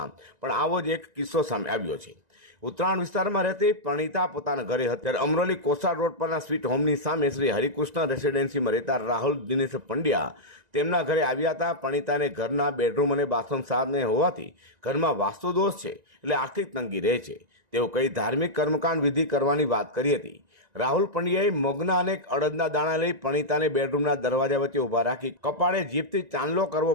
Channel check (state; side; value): late; left; 1.9 ms